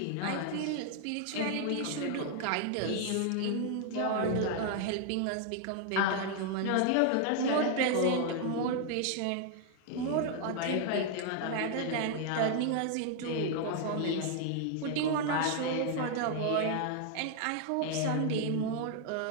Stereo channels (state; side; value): different; both; correlation 0.00